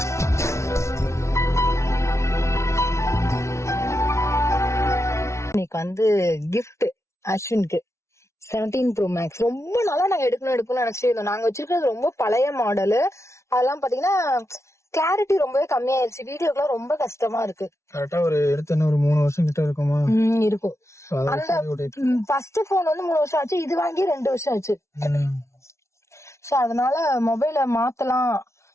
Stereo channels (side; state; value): right; late; 0.13 ms